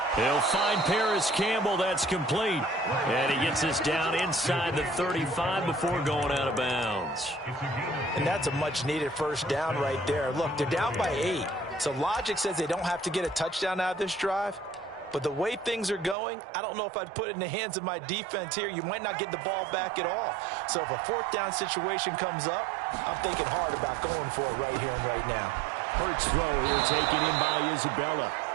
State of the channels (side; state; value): left; drops out; at 16.2 s